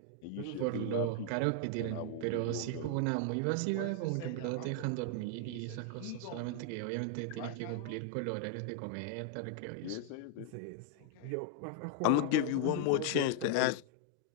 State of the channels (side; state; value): both; different; correlation 0.00